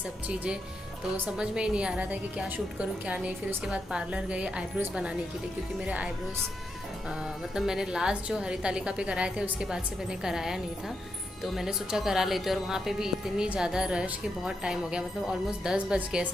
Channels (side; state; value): both; normal; correlation 0.84